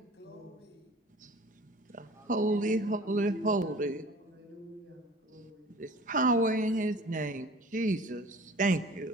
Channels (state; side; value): normal; both; correlation 0.46